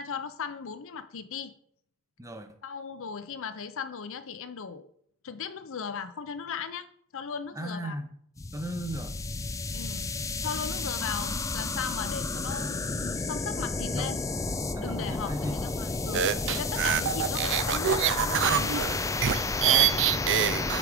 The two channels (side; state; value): both; normal; correlation 0.23